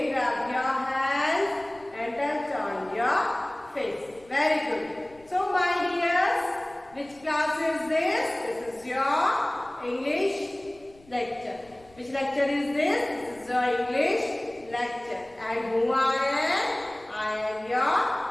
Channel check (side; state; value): left; noise; rumble, 27 dB below the sound